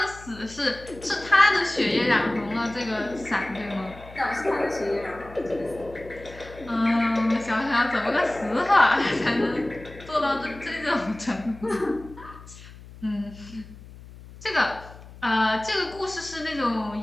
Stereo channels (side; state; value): left; noise; hum, 18 dB below the sound